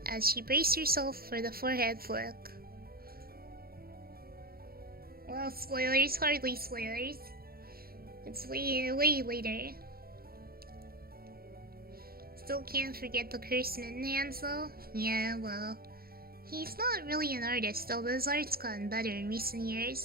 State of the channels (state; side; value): late; left; 0.44 ms